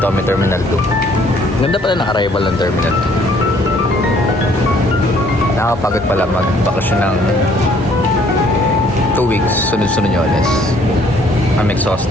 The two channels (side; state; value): both; normal; correlation 0.61